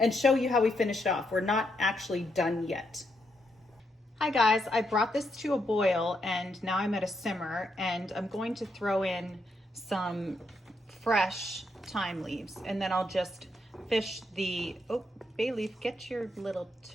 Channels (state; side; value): normal; both; correlation 0.79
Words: show you how we finished off. We're not actually done yet. Hi guys, I brought this to a boil and now I'm at a simmer, and I'm going to throw in some fresh thyme leaves, and then I'll just fish the, oh, bay leaf, get your little